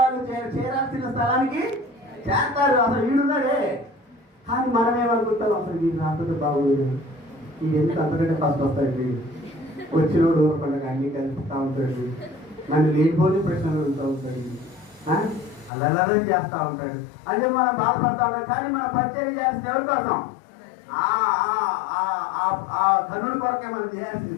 చేరాల్సిన స్థలానికి చేస్తారు. అసలు వీడున్నాడే, కానీ మనమేమనుకుంటాం, అసలు వీడు రాకపోతే బాగుంది, వీడు ఎందుకు అంతకంటే ఫస్ట్ వస్తాడు, వచ్చినోడు ఊరకుండా అన్ని కలుపుతూ ఉంటాడు, నన్ను లేనిపోని ప్రశ్నలు అడుగుతూ ఉంటాడు, అల్లరి చేస్తూ ఉంటాడు అంటే మనం బాధపడతా ఉంటాం. కానీ మనం పరిచయం చేయాల్సింది ఎవరి కోసం? ఆ కన్నుడి కొరకే మనం చేయాల్సింది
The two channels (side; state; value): right; drops out; at 15.7 s